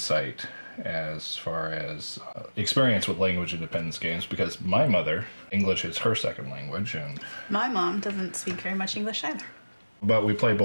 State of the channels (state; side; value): inverted; both; correlation -1.00